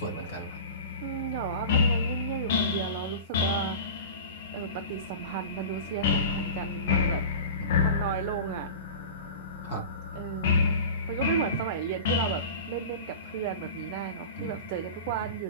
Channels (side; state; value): both; inverted; correlation -0.33